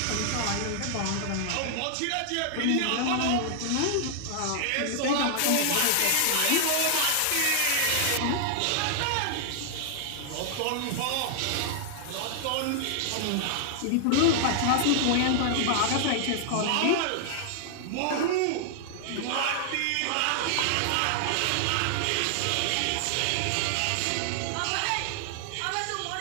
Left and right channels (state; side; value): different; both; correlation -0.01